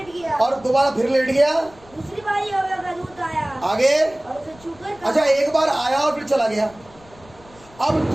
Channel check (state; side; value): noise; left; rumble, 25 dB below the sound